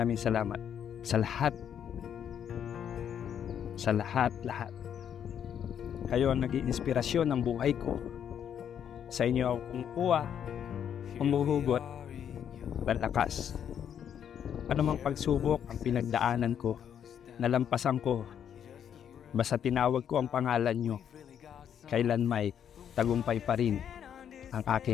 salamat sa lahat. Sa lahat. Kayo ang naging inspirasyon ng buhay ko. Sa inyo ako kumukuha, humuhugot, malakas. Anumang pagsubok ang pinagdaanan ko, nalampasan ko, basta tinawag ko ang pangalan nyo, kailan may tagumpay pa rin ang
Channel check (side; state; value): right; quieter; 8.9 dB